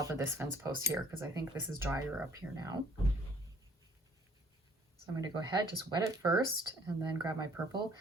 of this fence post here because I think this is drier up here now. So I'm going to go ahead, just wet it first and then grab my purple.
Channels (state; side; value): normal; both; correlation 0.57